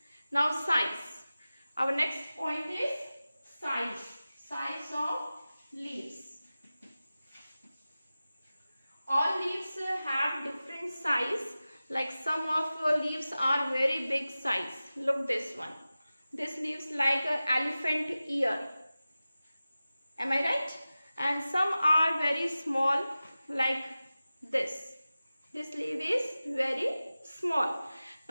Now size. Our next point is size. Size of leaves. All leaves have different size. Like some of leaves are very big size. Look this one. This leaves like an elephant ear. Am I right? And some are very small, like this. This leaf is very small.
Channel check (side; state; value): both; inverted; correlation -0.96